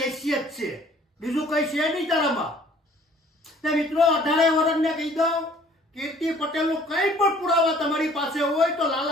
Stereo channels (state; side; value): normal; both; correlation 0.55